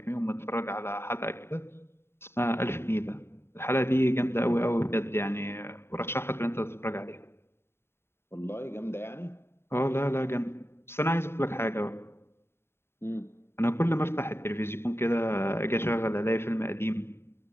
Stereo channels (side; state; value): right; late; 0.12 ms